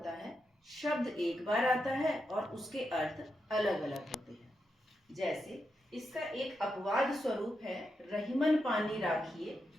है, शब्द एक बार आता है और उसके अर्थ अलग अलग होते हैं। जैसे इसका एक अपवाद स्वरूप है रहीमन पानी राखिए,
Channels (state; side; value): normal; both; correlation 0.85